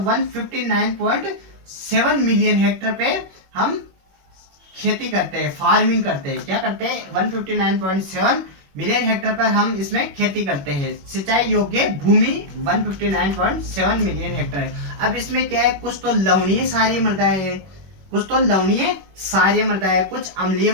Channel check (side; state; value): left; late; 21 ms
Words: मिलियन हेक्टेयर पे हम खेती करते हैं, फार्मिंग करते हैं। क्या करते हैं, 159.7 मिलियन हेक्टेयर पर हम इसमें खेती करते हैं। सिंचाई योग्य भूमि 159.7 मिलियन हेक्टेयर है। अब इसमें क्या है, कुछ तो लवणीय सारी मृदाएं हैं, कुछ तो लवणीय क्षारीय मृदा है, कुछ अम्लीय